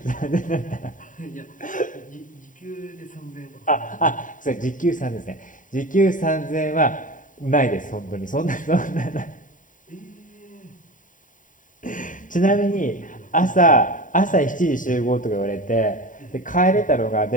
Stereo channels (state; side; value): late; right; 0.38 ms